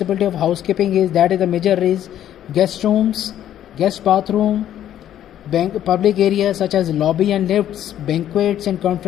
of housekeeping is the major is guest rooms, guest bathroom, Public areas such as lobby and lifts, banquets and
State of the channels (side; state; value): right; quieter; 11.2 dB